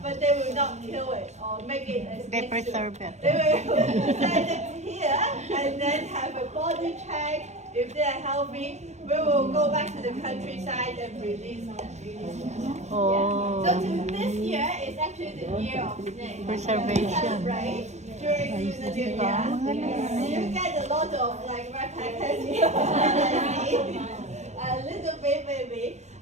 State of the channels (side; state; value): left; late; 0.33 ms